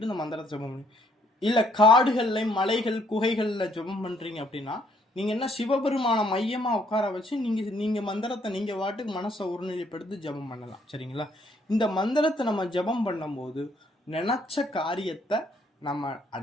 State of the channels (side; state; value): both; normal; correlation 0.68